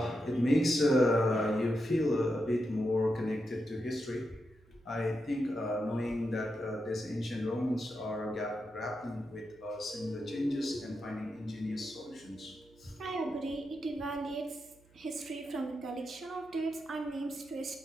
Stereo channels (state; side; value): noise; right; hum, 29 dB below the sound